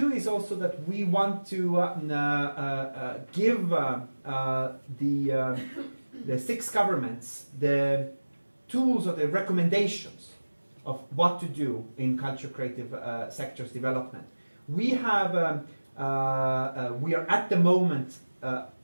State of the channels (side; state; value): both; inverted; correlation -1.00